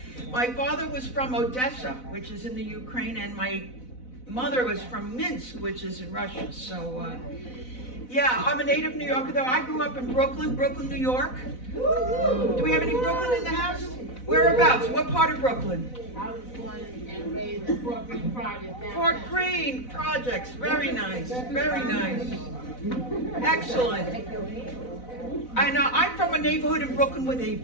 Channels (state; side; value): late; right; 4.0 ms